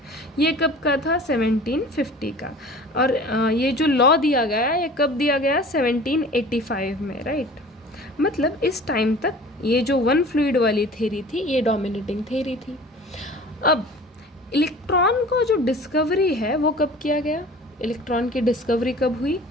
ये कब का था, 1750 का। और ये जो लॉ दिया गया, ये कब दिया गया, 1785 में, राइट। मतलब इस टाइम तक ये जो वन फ्लूइड वाली थ्योरी थी, ये डोमिनेटिंग थ्योरी थी। अब इलेक्ट्रॉन को जो डिस्कवरी है वो कब किया गया, इलेक्ट्रॉन की डिस्कवरी कब हुई,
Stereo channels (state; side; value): normal; both; correlation 0.43